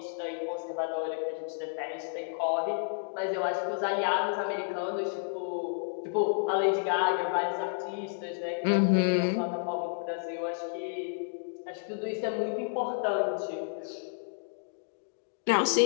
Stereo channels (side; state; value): right; silent; digital silence